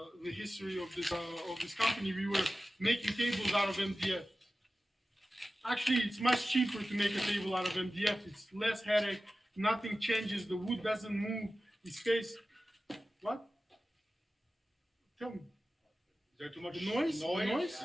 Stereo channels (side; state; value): both; normal; correlation 0.95